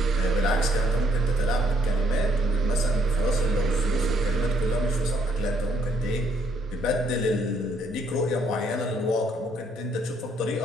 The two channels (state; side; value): normal; both; correlation 0.69